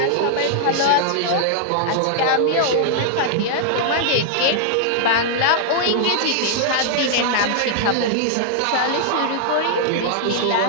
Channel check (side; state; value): both; different; correlation -0.01